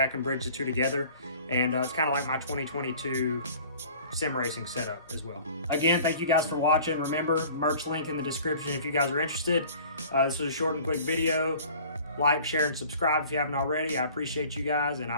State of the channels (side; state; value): both; inverted; correlation -0.47